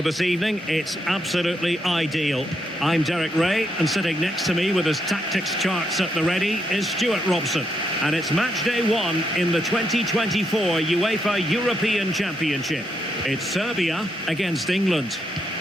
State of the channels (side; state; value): both; normal; correlation 0.79